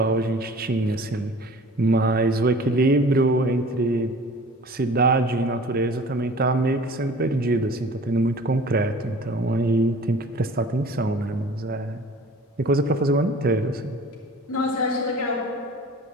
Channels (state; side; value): normal; both; correlation 0.45